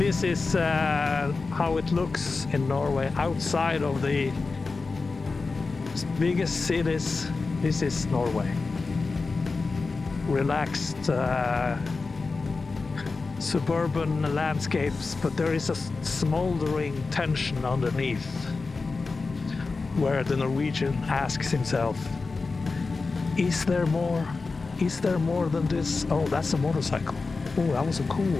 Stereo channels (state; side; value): quieter; right; 4.1 dB